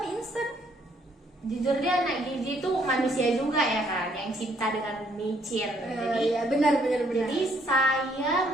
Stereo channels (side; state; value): both; normal; correlation 0.68